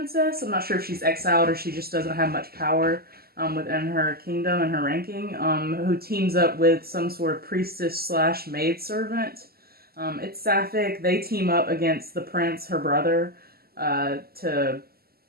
I'm not sure if she's exiled or she just doesn't have much power within her kingdom and her ranking, who teams up with some sort of priestess slash maidservant. It's sapphic. They team up against the prince, her brother, to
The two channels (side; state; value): left; late; 0.45 ms